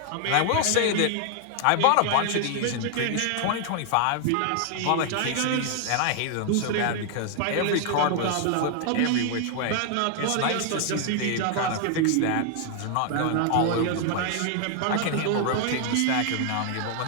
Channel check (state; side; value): different; both; correlation 0.00